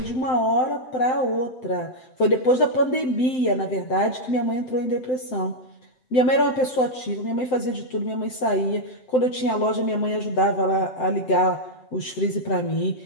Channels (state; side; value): late; right; 7.8 ms